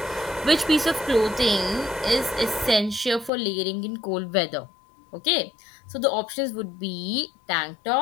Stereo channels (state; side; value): drops out; right; at 3.3 s